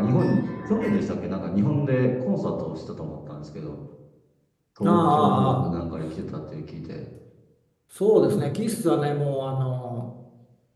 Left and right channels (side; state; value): both; identical; correlation 1.00